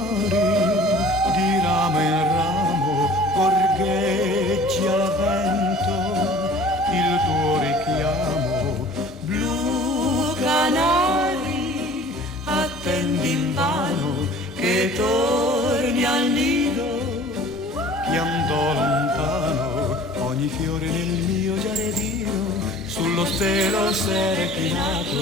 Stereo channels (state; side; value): normal; both; correlation 0.47